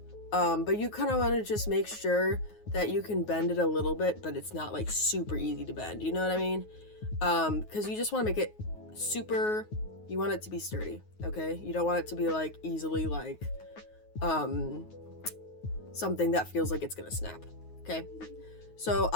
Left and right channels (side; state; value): right; late; 9.5 ms